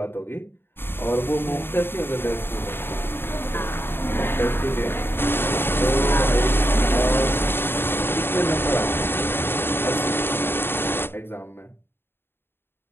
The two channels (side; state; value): right; late; 0.11 ms